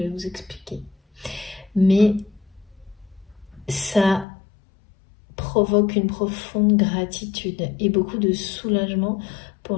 vous expliquer. Mais ça provoque une profonde gratitude et beaucoup de soulagement pour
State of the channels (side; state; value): right; drops out; at 4.2 s